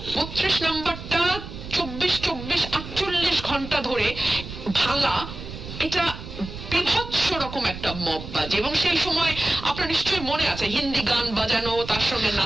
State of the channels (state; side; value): noise; right; rumble, 11 dB below the sound